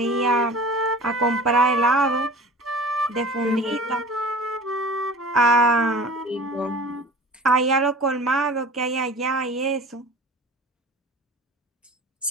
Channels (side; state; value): both; normal; correlation 0.40